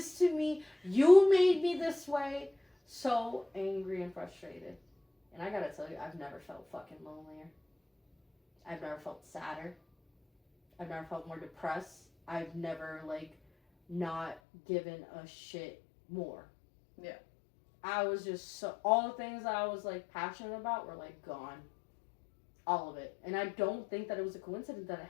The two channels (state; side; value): drops out; right; at 14.4 s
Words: to me. You made me this way. So angry and frustrated. And I gotta tell you, I've never felt fucking lonelier. I've never felt sadder. I've never felt more depressed. I've never, like, not given a shit more. Yeah. I was just so... All the things that I was, like, passionate about were, like, gone. All of it. And I don't think that it was a coincidence that it